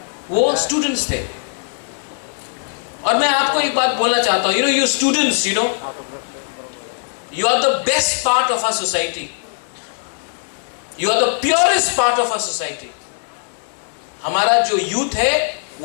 वो स्टूडेंट्स थे। और मैं आपको एक बात बोलना चाहता हूं, you students, you are the best part of our society, you are the purest part of our society. हमारा जो यूथ है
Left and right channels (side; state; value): right; silent; 66 dB below the other